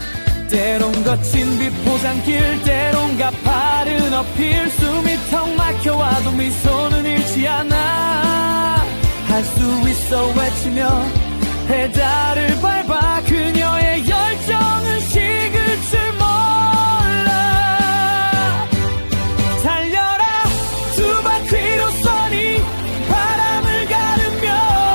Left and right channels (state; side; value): inverted; both; correlation -1.00